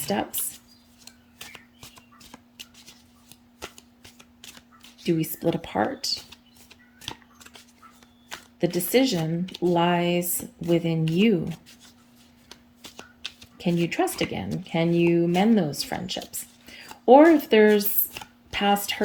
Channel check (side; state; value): both; identical; correlation 1.00